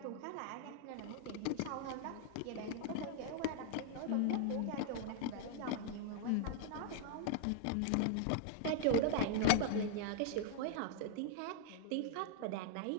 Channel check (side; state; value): both; different; correlation 0.00